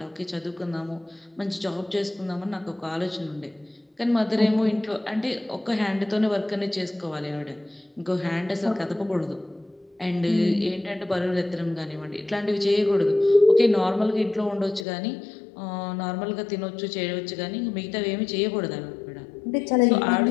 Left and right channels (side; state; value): right; drops out; at 14.9 s